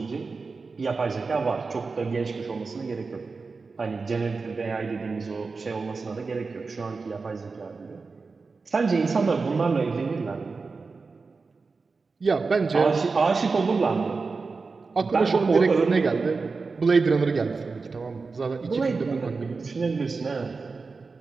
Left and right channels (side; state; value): left; quieter; 4.3 dB